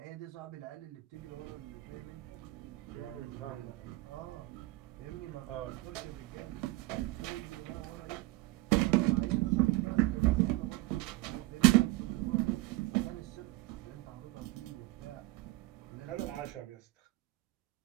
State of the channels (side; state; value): left; quieter; 19.9 dB